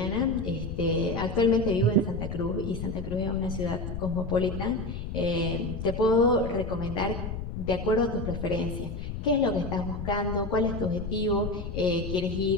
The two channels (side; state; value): left; noise; rumble, 6 dB below the sound